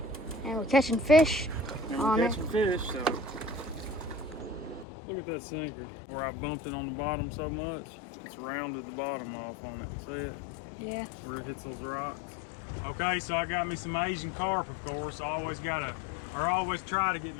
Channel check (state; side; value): drops out; right; at 4.9 s